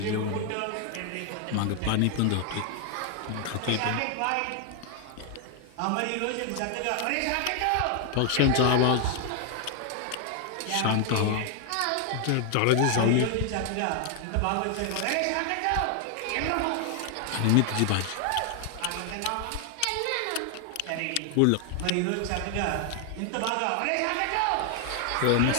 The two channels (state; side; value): different; both; correlation 0.00